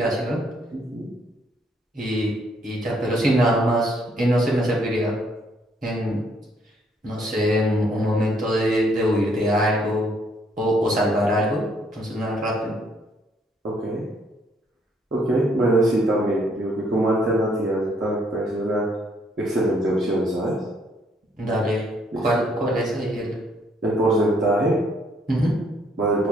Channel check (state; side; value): normal; both; correlation 0.68